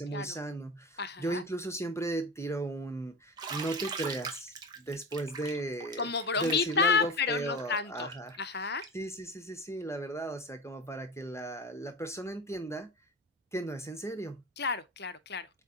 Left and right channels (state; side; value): normal; both; correlation 0.29